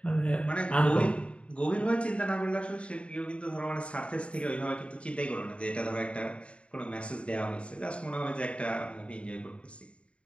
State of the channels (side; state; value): right; late; 0.059 ms